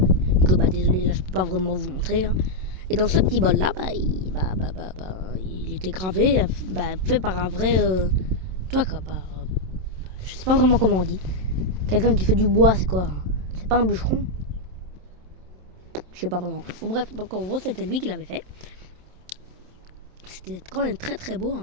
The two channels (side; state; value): left; late; 27 ms